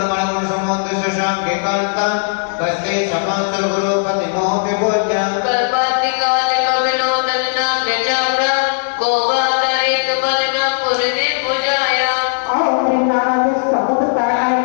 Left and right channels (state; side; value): silent; right; digital silence